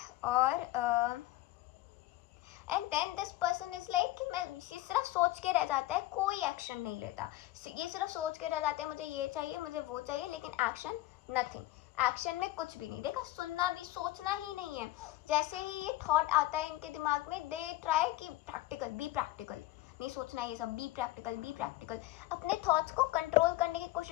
और and then this person is like कि मैं ये सिर्फ सोच के रह जाता है, कोई एक्शन नहीं लेता, ये सिर्फ सोच के रह जाते हैं मुझे ये चाहिए मुझे वो चाहिए, लेकिन एक्शन नथिंग। एक्शन में कुछ भी नहीं। देखा, सुनना भी, सोचना ही नहीं है। जैसे ही ये थॉट आता है इनके दिमाग में, दे ट्राई कि प्रैक्टिकल, बी प्रैक्टिकल, नहीं सोचना ये सब, बी प्रैक्टिकल, बी प्रैक्टिकल। अपने थॉट्स को कंट्रोल करने की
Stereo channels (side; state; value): right; quieter; 17.2 dB